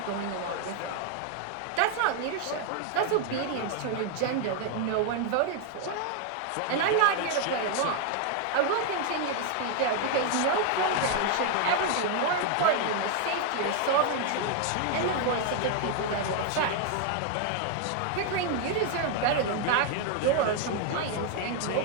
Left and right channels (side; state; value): both; different; correlation 0.00